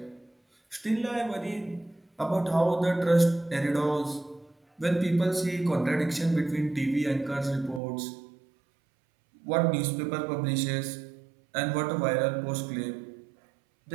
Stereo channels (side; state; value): left; drops out; at 7.8 s